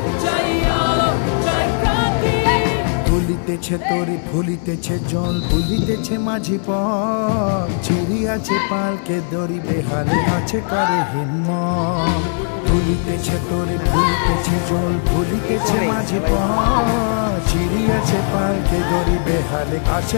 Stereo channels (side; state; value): right; silent; digital silence